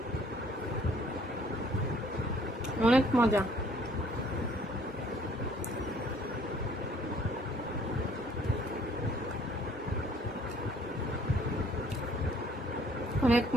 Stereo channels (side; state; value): both; normal; correlation 0.59